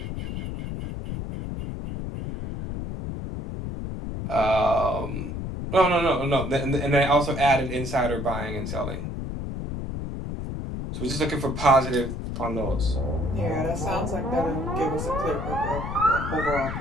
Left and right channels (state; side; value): noise; left; rumble, 5 dB below the sound